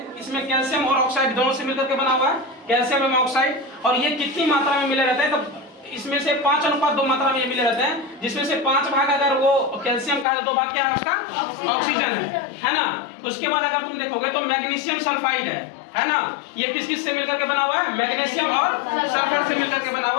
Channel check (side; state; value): right; drops out; at 10.2 s